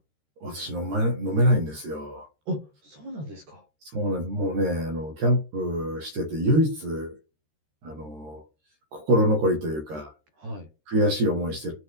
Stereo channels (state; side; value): late; left; 13 ms